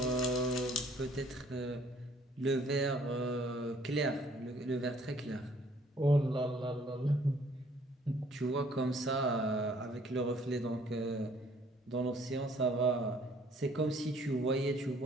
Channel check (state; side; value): normal; both; correlation 0.60